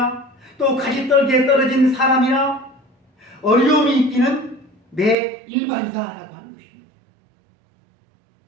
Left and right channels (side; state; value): left; drops out; at 5.2 s